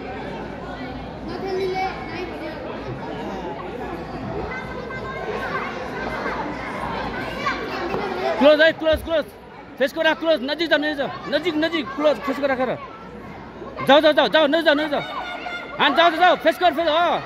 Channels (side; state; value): both; identical; correlation 1.00